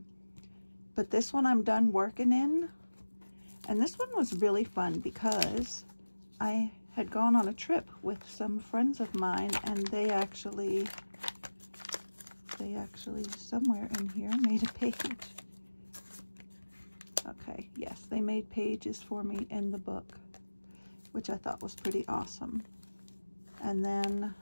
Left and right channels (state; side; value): inverted; both; correlation -1.00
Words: But this one I'm done working in, and this one was really fun because I had gone on a trip with some friends of mine, and they actually somewhere in here made a page. Okay, yes, they made pages for me in the book, which I thought was pretty awesome. And then